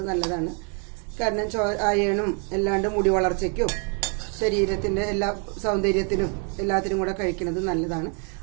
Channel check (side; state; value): left; quieter; 39.0 dB